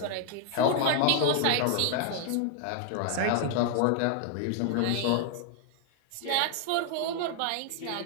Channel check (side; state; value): both; different; correlation 0.00